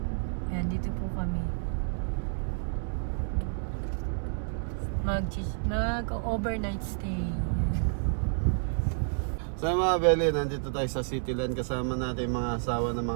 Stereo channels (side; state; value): left; silent; digital silence